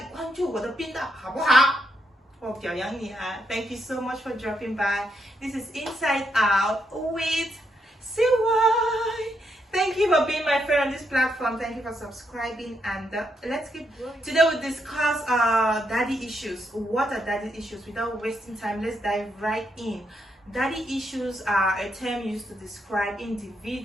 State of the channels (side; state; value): both; normal; correlation 0.79